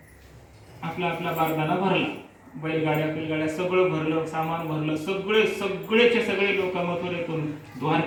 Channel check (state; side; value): identical; both; correlation 1.00